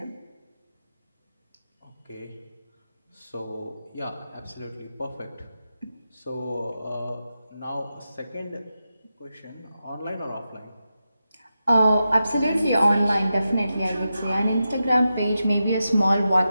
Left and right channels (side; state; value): both; inverted; correlation -0.90